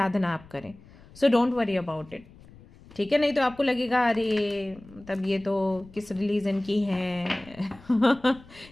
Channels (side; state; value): left; noise; rumble, 22 dB below the sound